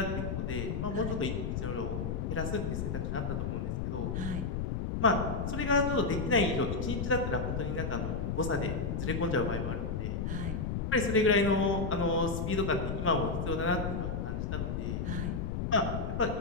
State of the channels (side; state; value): left; noise; rumble, 1 dB below the sound